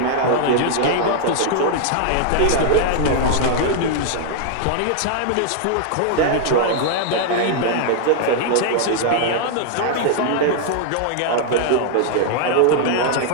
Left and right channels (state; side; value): different; both; correlation 0.00